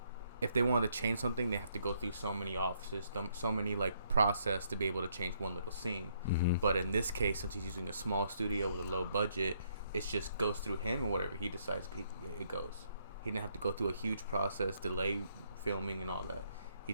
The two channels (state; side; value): inverted; both; correlation -0.72